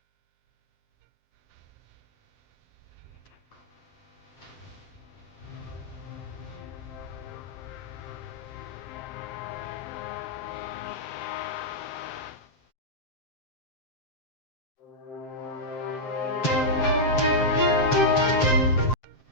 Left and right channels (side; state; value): right; late; 7.6 ms